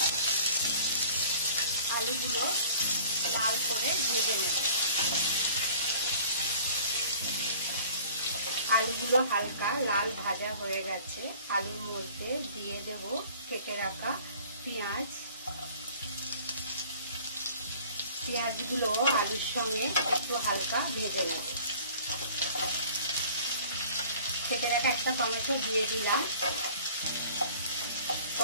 আলুগুলো লাল করে ভেজে নেব। আলুগুলো হালকা লাল ভাজা হয়ে গেছে, আলুর মধ্যে দিয়ে দেব কেটে রাখা পেঁয়াজ। পেঁয়াজগুলো আলুর সঙ্গে একটু হালকা ভেজে নেব। কেটে রাখা একটা টমেটো দিয়ে দিলাম,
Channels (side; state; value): both; inverted; correlation -0.49